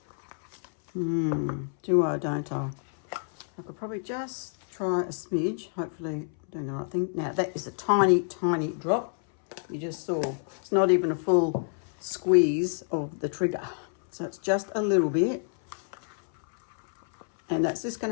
Do I, don't I? I could probably just try a smidge, hopefully I'm doing the right thing. Now that is a tiny, tiny drop. You just saw, it's not even a full squeeze of the trigger. So it's just a little bit. And that's just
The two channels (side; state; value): right; silent; 59 dB below the other